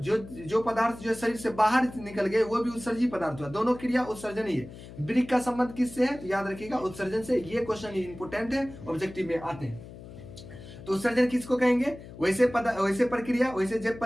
पदार्थ जो शरीर से बाहर निकल गए वो भी उत्सर्जी पदार्थ हुआ। दोनों क्रिया उत्सर्जन ही है। ब्रिक का संबंध किससे है? तो याद रखिएगा उत्सर्जन से। ये क्वेश्चन इंपोर्टेंट है, ऑब्जेक्टिव में आते हैं। तो उत्सर्जन किसको कहेंगे? वैसे प्रक्रिया, वैसे जैव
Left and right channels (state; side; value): noise; left; hum, 15 dB below the sound